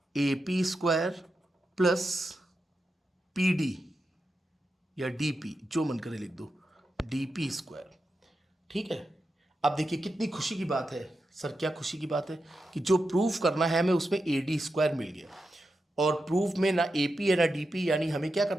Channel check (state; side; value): normal; both; correlation 0.89